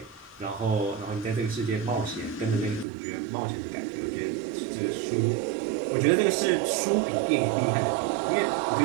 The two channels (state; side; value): drops out; left; at 2.9 s